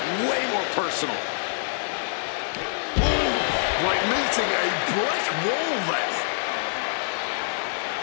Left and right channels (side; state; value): right; silent; 57 dB below the other